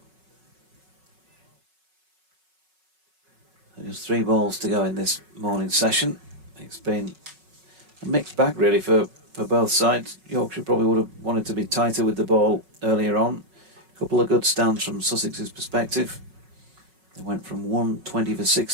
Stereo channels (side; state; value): left; late; 5.4 ms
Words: Just 3 balls to go in this morning session. It's been a mixed bag really for both sides. Yorkshire probably would have wanted to be tighter with the ball earlier on. A couple of good stands from Sussex's perspective. They went from 120 for